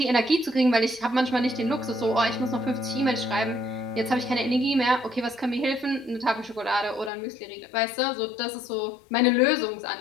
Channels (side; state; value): right; drops out; at 7.1 s